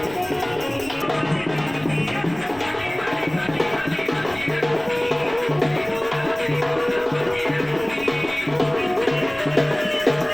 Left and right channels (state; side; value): noise; left; rumble, 22 dB below the sound